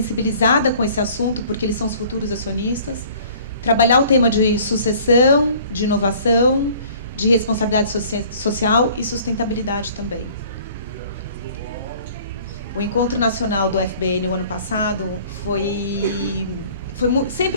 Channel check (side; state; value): both; inverted; correlation -0.52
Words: com esse assunto, porque eles são os futuros acionistas. Trabalhar o tema de sucessão, de inovação, de responsabilidade social e sustentabilidade também. O Encontro Nacional do FBN, o ano passado,